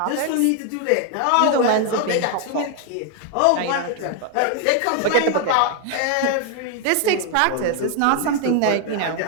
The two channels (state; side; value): different; both; correlation 0.00